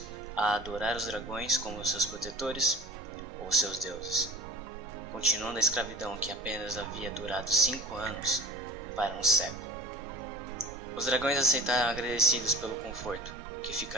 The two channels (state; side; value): normal; both; correlation 0.39